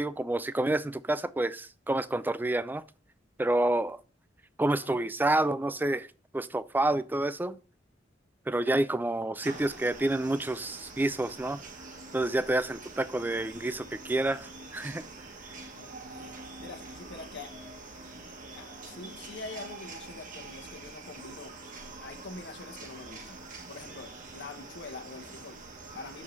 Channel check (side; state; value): both; normal; correlation 0.80